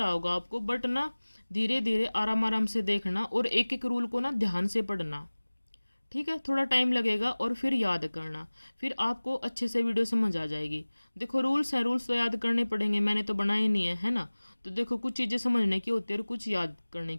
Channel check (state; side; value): inverted; both; correlation -1.00